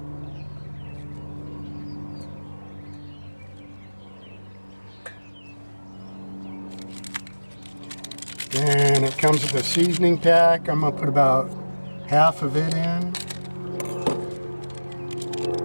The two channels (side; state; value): both; inverted; correlation -1.00